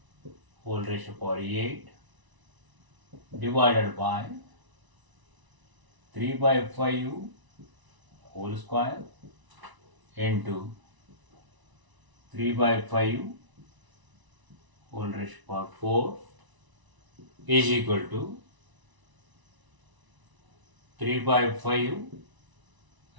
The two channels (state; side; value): late; left; 1.0 ms